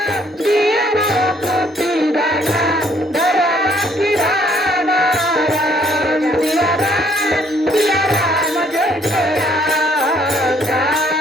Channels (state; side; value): normal; both; correlation 0.65